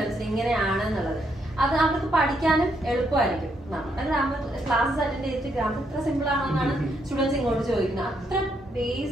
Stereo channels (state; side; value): normal; both; correlation 0.76